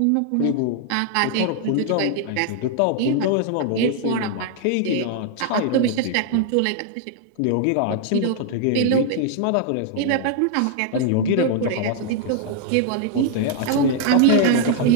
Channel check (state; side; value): different; both; correlation 0.00